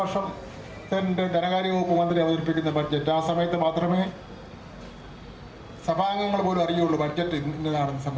ധനകാര്യ വകുപ്പ് മന്ത്രി അവതരിപ്പിക്കുന്ന ബഡ്ജറ്റ്. ആ സമയത്ത് മാത്രമേ സഭാംഗങ്ങൾ പോലും അറിയുള്ളൂ ബഡ്ജറ്റ് ഇന്നതാണെന്ന്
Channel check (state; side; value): identical; both; correlation 1.00